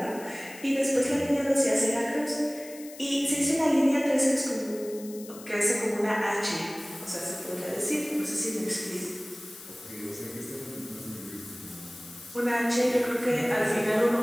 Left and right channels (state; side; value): noise; left; hiss, 17 dB below the sound